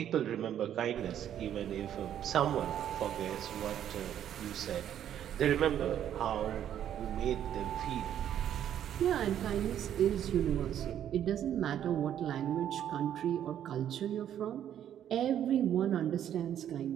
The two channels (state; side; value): quieter; left; 10.3 dB